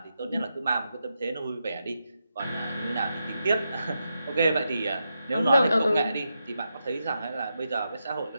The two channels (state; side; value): inverted; both; correlation -0.86